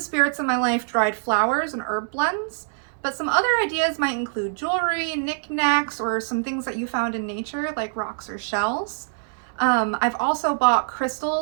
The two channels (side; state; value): left; silent; digital silence